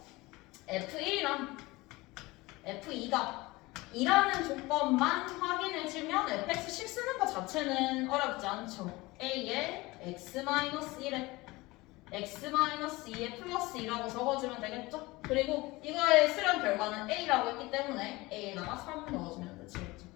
f1이랑 f2가 2라는 조건만 확인해주면 fx식 쓰는 것 자체는 어렵지 않죠. a에 x-1에 x-2에 플러스 2라고 적어주면 되겠죠? 그리고 이거의 수렴 결과는 a라고 했기 때문에 a에다가 3 넣어주면 되겠죠.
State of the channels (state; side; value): quieter; right; 21.5 dB